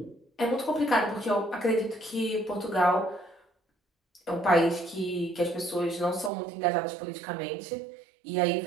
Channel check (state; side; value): drops out; left; at 6.3 s